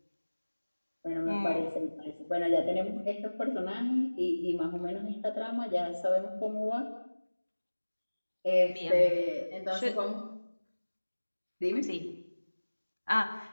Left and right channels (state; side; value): inverted; both; correlation -1.00